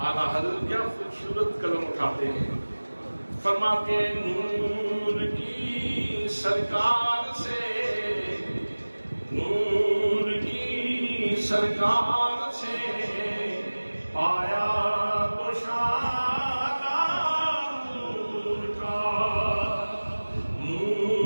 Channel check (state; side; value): inverted; both; correlation -1.00